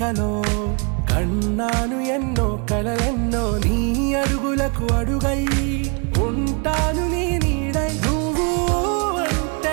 కన్నాను ఎన్నో కలలెన్నో, నీ అడుగులకు అడుగై ఉంటాను నీ నీడై. నువ్వు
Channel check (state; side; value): quieter; left; 34.8 dB